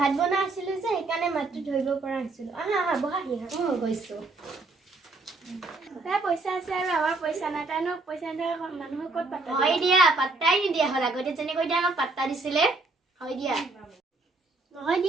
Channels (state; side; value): quieter; left; 3.4 dB